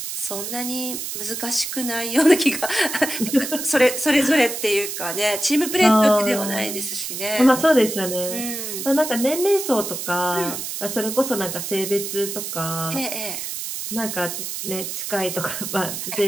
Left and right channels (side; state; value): right; noise; hiss, 5 dB below the sound